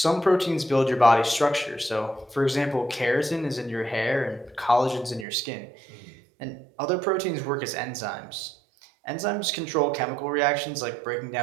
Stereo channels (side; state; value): left; drops out; at 5.2 s